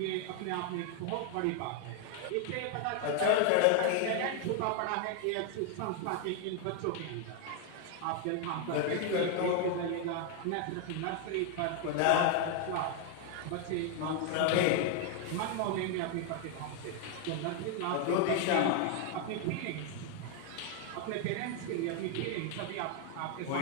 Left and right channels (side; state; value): both; different; correlation 0.00